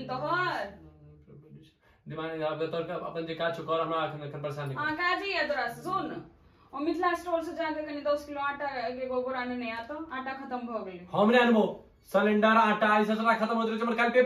तो हर दिमाग आप तोर का अपन जे काज कर हमरा अखन परेशान नहीं हां काजी है तोरा सुन और मिथिला स्टोर से जाके कनी 10 किलो आटा के गोबर आने नहीं आता आटा खत्म भ गेलै हमरे अनबो सिलेंडर आटा ई सब खत्म होत रहे हमर काल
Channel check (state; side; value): identical; both; correlation 1.00